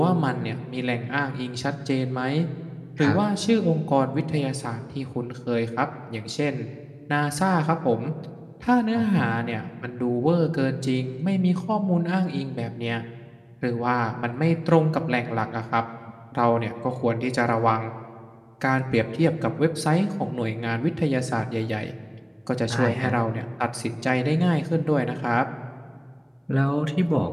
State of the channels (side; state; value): both; identical; correlation 1.00